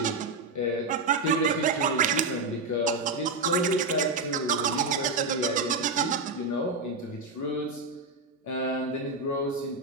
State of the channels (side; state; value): left; quieter; 3.5 dB